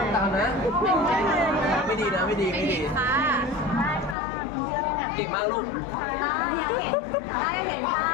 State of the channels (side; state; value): right; drops out; at 4.2 s